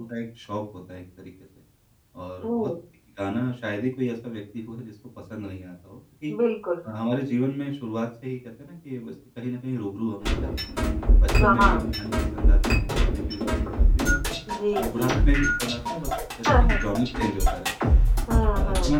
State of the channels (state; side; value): identical; both; correlation 1.00